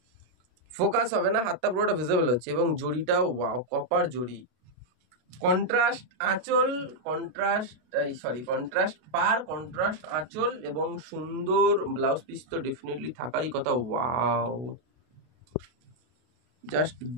ফোকাস হবে না, হাতটা পুরোটা ভিজিবল হচ্ছে। এবং জড়িটাও ওয়াও, কপার জড়ি, কন্ট্রাস্ট আঁচল, কন্ট্রাস্ট পার, কন্ট্রাস্ট আঁচল এবং সুন্দর ব্লাউজ পিস তো ডেফিনেটলি থাকারই কথা। ওয়াও, জাস্ট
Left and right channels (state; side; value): late; left; 32 ms